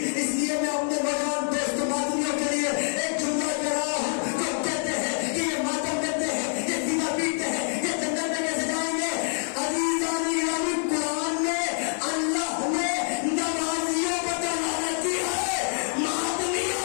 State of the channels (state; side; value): silent; right; 61 dB below the other